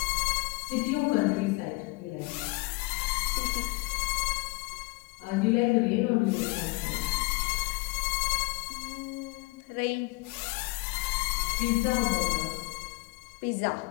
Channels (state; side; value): quieter; right; 23.5 dB